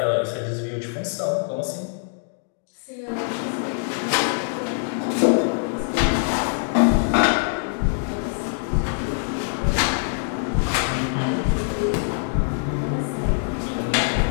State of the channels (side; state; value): right; silent; digital silence